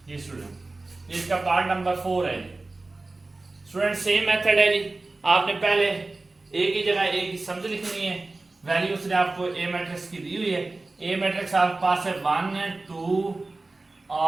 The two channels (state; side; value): quieter; left; 3.3 dB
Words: जी स्टूडेंट इसका पार्ट नंबर 4 है जी। स्टूडेंट सेम मेथड है जी। आपने पहले ए की जगह ए की समझ लिखनी है, वैल्यू उसने आपको ए मैट्रिक्स की दी हुई है। ए मैट्रिक्स आपके पास है 1 2